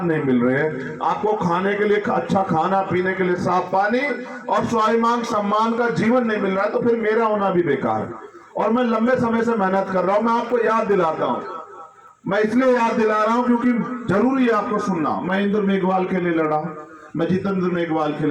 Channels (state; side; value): identical; both; correlation 1.00